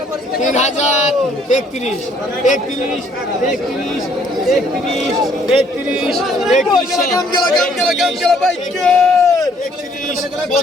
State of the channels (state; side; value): normal; both; correlation 0.64